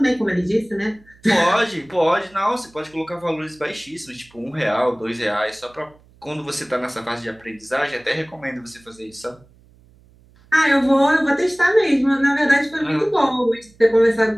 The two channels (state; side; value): noise; right; hum, 29 dB below the sound